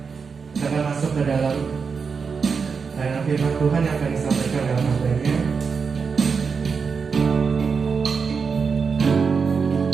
Kita akan masuk ke dalam firman Tuhan yang akan disampaikan dalam materi.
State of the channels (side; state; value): left; quieter; 5.5 dB